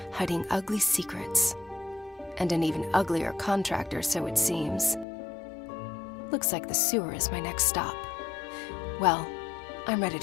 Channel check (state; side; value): drops out; right; at 5.1 s